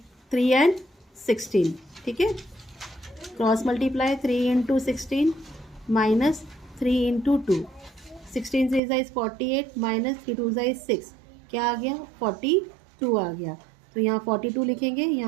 3 and 16, ठीक है। Cross multiply 3 into 16 minus 3 into 2, 16 से इज 48 माइनस 3 2 इज 6, क्या आ गया 42 आ गया। तो यहाँ 42 लिखेंगे,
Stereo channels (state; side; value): drops out; left; at 8.8 s